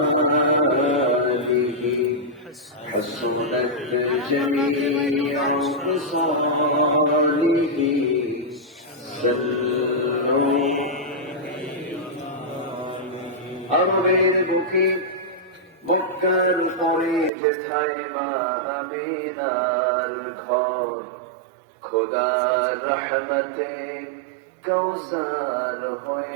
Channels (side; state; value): left; drops out; at 17.3 s